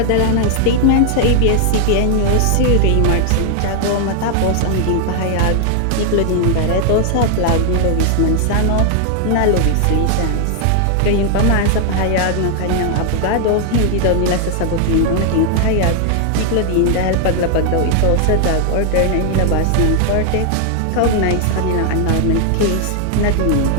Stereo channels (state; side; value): different; both; correlation 0.00